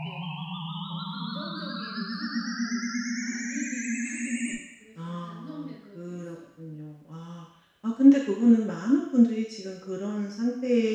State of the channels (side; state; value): both; identical; correlation 1.00